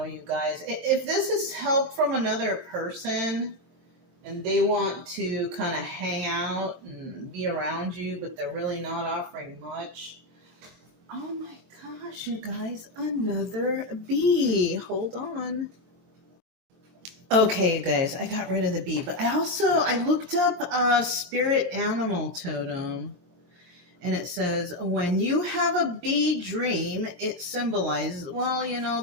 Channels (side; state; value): left; late; 23 ms